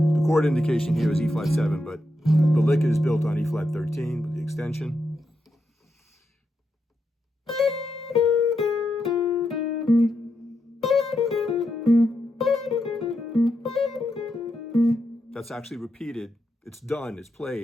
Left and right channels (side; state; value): both; normal; correlation 0.84